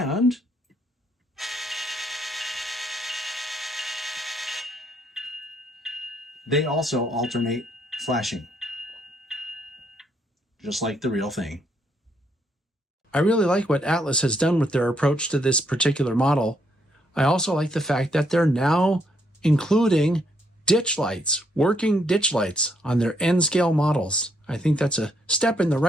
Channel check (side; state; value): both; normal; correlation 0.73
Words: they also alternate flashing, just like the real thing. I really like what Atlas has done with their approach to this particular model. I also like the fact that they're now including ditch lights, working ditch lights on their N-scale models. I think that's a step in the